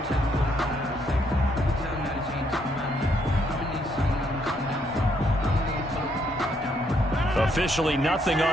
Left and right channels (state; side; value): normal; both; correlation 0.72